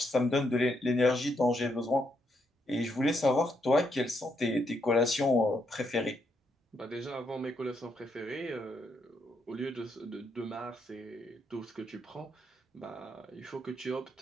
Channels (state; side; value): normal; both; correlation 0.77